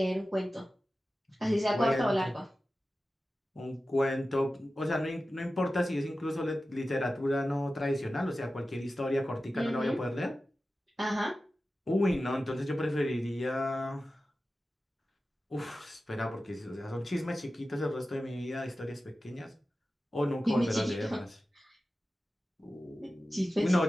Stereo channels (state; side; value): normal; both; correlation 0.94